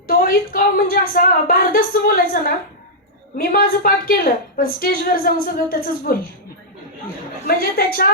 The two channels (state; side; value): normal; both; correlation -0.09